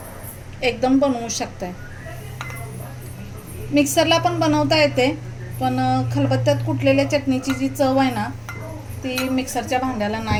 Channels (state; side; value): identical; both; correlation 1.00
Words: एकदम बनवू शकताय. मिक्सरला पण बनवता येते, पण खलबत्त्यात कुटलेल्या चटणीची जी चव आहे ना, ती मिक्सरच्या भांड्याला